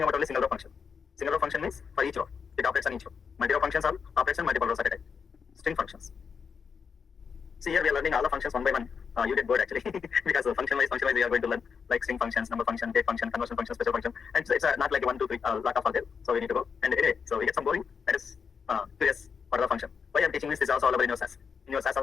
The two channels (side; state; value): right; quieter; 6.2 dB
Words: about only single row function. Single row function means for each row, it operates on each row. Multi-row functions are operates on multiple rows at a time. String functions. See here we are learning all the functions one by one. you get bored actually because function wise we are going to learn like string functions, number function, date function, conversion function, special function, and so it's not like 1, 2, 3 lot of are there. So we need to go and anyway, so we get some boring. That is curious for the function. Why I'm teaching this is also available in your SAS. In your SAS